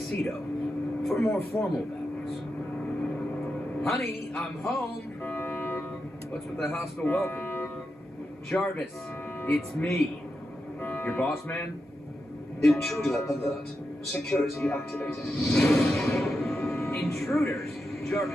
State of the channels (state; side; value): normal; both; correlation 0.88